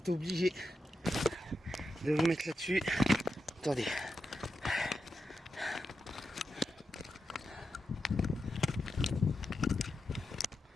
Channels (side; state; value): both; normal; correlation 0.88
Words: obligé de vous mettre là-dessus. Attendez.